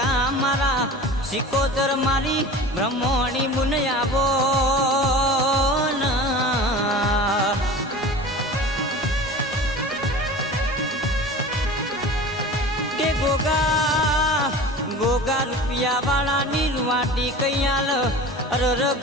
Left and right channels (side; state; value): both; normal; correlation 0.37